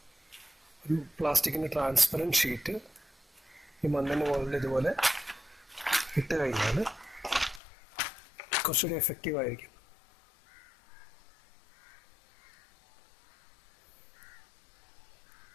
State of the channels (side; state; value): right; drops out; at 7.6 s